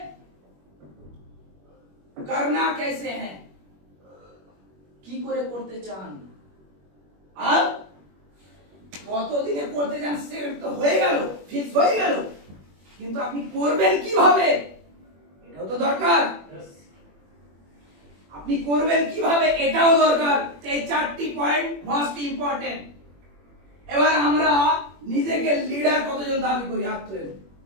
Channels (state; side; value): late; left; 21 ms